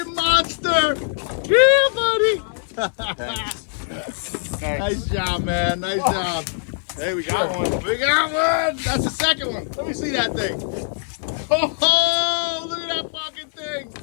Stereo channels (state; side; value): silent; right; 64 dB below the other